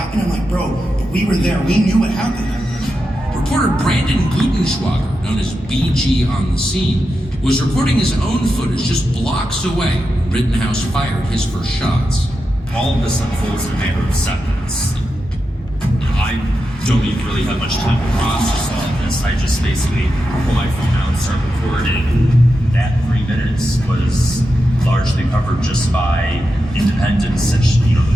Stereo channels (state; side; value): normal; both; correlation 0.89